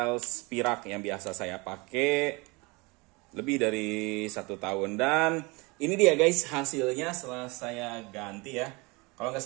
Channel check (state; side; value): quieter; left; 26.3 dB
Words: Spirak yang biasa saya pakai lebih dari 1 tahun. Dan ini dia guys hasilnya setelah saya ganti ya. Kalau nggak